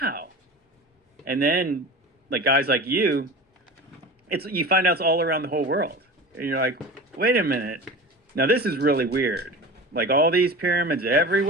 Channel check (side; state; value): both; normal; correlation 0.33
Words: And then like guys like you find out it's all around the whole world. And you're like, wait a minute. Now this is really weird. Like all these pyramids